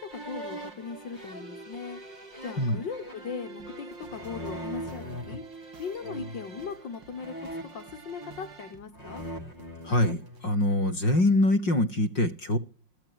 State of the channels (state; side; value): late; right; 5.5 ms